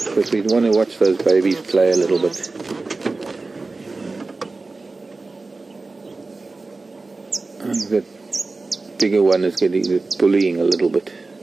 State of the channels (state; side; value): quieter; left; 3.6 dB